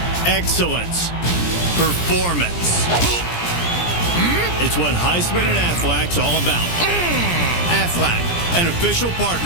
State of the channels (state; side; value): late; right; 17 ms